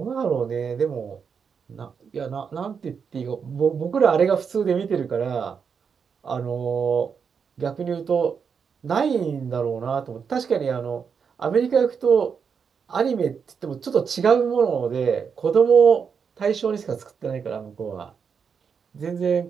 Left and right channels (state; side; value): quieter; left; 6.4 dB